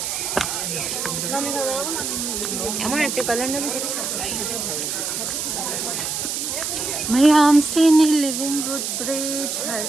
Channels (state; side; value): noise; right; hiss, 2 dB below the sound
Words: আমার একটা কালার নেবে Mayam Sini Living Road Bridge